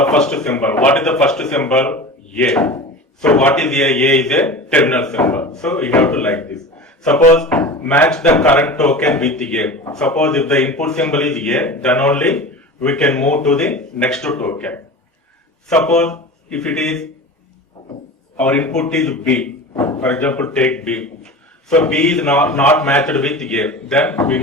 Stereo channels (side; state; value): both; normal; correlation 0.32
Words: first symbol. What is the first symbol? A. So what is A? A is a terminal symbol. So you have to like this. Suppose match the current token with A. Suppose if the input symbol is A, then only we can move to the next token. Suppose if it is our input is B, for example take B. So B is not matched with A, then we